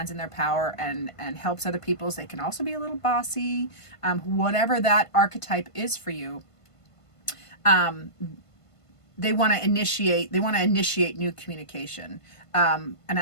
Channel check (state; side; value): late; right; 1.5 ms